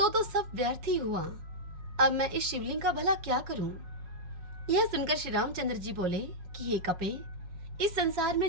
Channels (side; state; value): left; late; 5.5 ms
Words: तो सब व्यर्थ ही हुआ। अब मैं इस शिवलिंग का भला क्या करूं? यह सुनकर श्री रामचंद्र जी बोले कि हे कपे, इस संसार